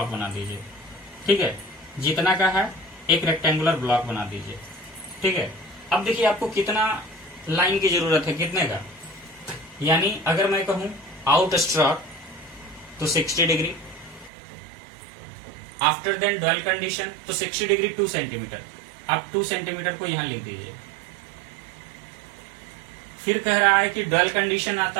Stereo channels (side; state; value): left; drops out; at 14.3 s